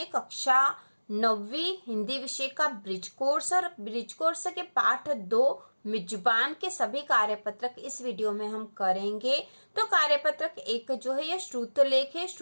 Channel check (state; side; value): inverted; both; correlation -1.00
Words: कक्षा 9वीं हिंदी विषय का ब्रिज कोर्स और ब्रिज कोर्स के पाठ 2 मिजबान के सभी कार्यपत्रक इस वीडियो में हम करेंगे। तो कार्यपत्रक 1 जो है यह श्रुतलेख है।